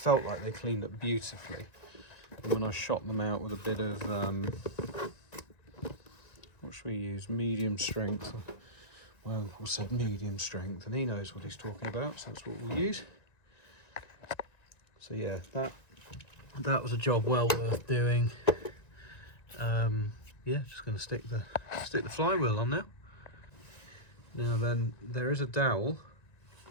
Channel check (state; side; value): late; right; 1.9 ms